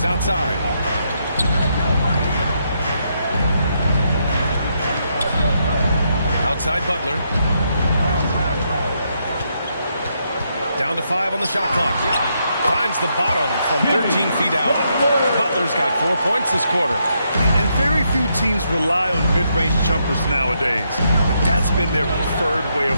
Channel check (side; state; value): both; inverted; correlation -0.78